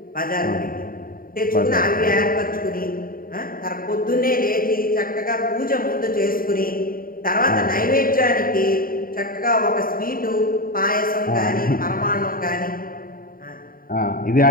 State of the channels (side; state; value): right; late; 0.41 ms